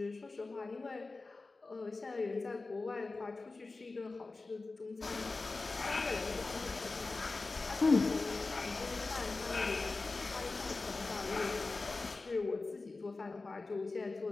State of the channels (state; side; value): quieter; right; 3.6 dB